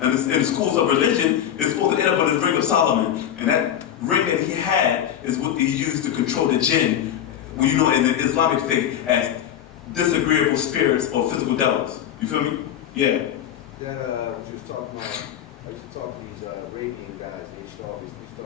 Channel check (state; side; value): quieter; right; 10.2 dB